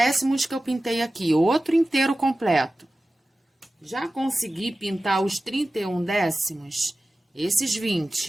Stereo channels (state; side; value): normal; both; correlation 0.95